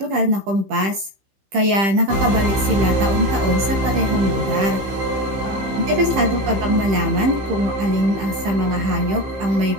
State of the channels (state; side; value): late; left; 15 ms